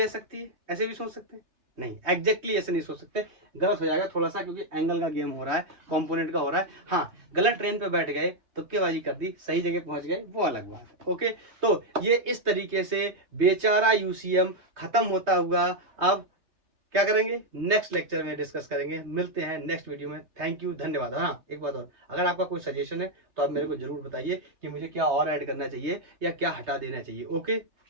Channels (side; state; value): left; late; 3.2 ms